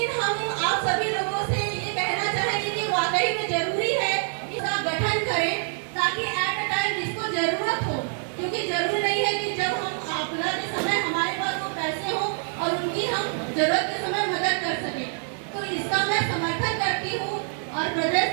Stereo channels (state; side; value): silent; left; 61 dB below the other